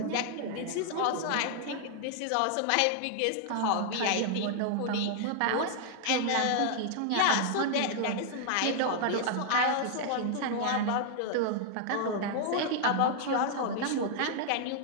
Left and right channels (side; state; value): both; different; correlation 0.00